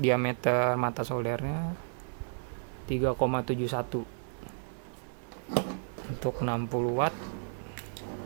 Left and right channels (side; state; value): left; silent; digital silence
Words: mata soldernya 3,71. Untuk 60 watt